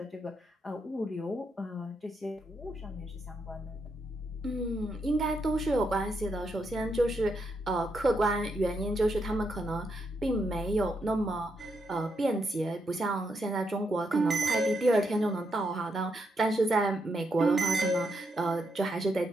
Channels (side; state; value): both; normal; correlation 0.80